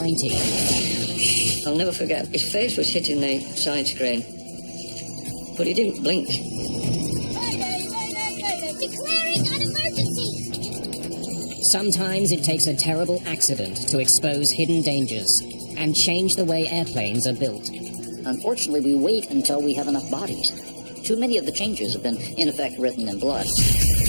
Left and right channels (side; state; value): both; inverted; correlation -1.00